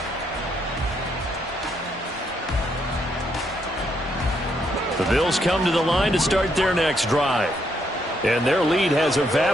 Bills come to the line to start their next drive. And their lead has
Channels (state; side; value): normal; both; correlation 0.75